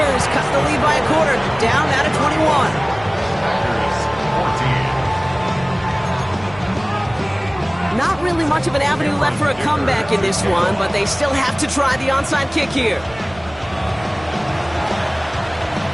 cut the lead by a quarter, down out of 21. Not really much of an avenue left for a comeback in this one, but they still have to try the onside kick here.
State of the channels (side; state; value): right; noise; rumble, 21 dB below the sound